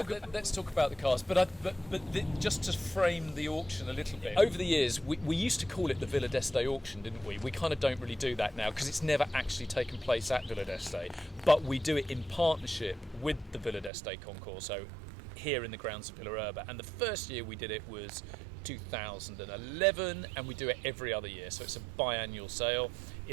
talk about the cars. But just to frame the auction a little bit. Over the years, we used to call it the Villa d'Este auction, didn't we? We kind of don't really do that now because it's never actually taken place at Villa d'Este. But we do it in partnership with the Villa d'Este Concorso here in the grounds of Villa Erba. And the first year we did it was 2011, and we do it every other year, so it's a biannual sale.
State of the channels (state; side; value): drops out; left; at 13.9 s